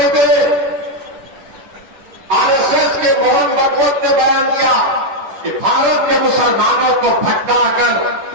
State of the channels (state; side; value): late; left; 10 ms